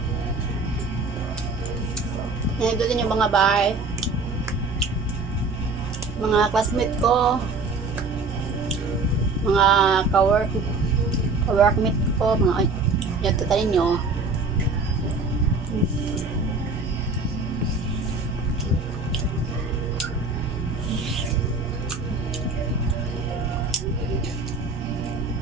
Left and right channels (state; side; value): quieter; left; 3.8 dB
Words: ito din yung mga bahay. Mga classmate ko. Mga ka-workmate ko. Mga yan, ito tayo nyo.